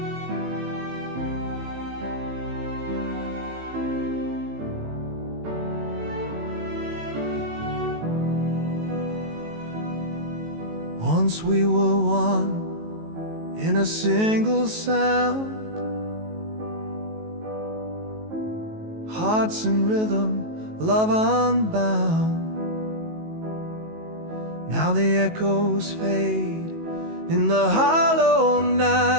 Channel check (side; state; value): left; late; 19 ms